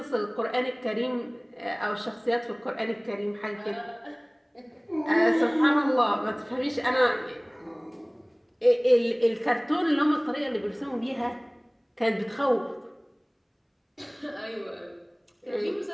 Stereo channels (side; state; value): both; identical; correlation 1.00